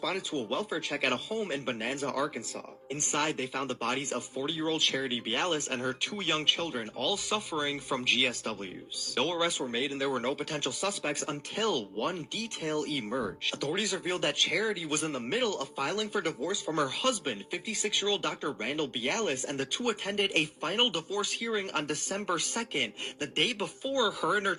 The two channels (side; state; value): both; identical; correlation 1.00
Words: to a welfare check at a home in Bonanza, Arkansas. Inside, they found the bodies of 40-year-old Charity Bellis and her 2 young children, all suffering from GSWs. No arrests were made, and there were no potential suspects until one detail emerged. Authorities revealed that Charity was in the middle of filing for divorce from her husband, 56-year-old Dr. Randall Bialis, and the two attended a final divorce hearing on December 2nd, the day before her and her